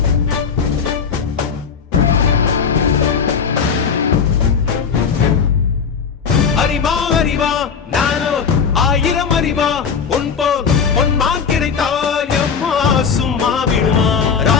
அறிவா அறிவா நானோ ஆயிரம் அறிவா உன் போல் பொன்மான் கிடைத்தாயம்மா சும்மா விடுமா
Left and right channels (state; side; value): quieter; right; 6.3 dB